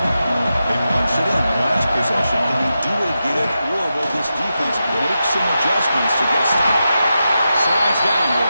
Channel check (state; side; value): inverted; both; correlation -0.89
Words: They punched it in the last possession. Can they do it again, or will this defense make some adjustments to get a stop? Slides down to